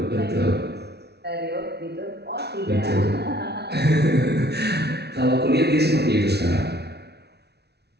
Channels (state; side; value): late; left; 0.49 ms